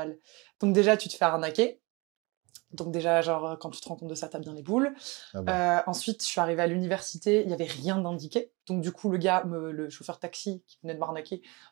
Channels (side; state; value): left; quieter; 26.5 dB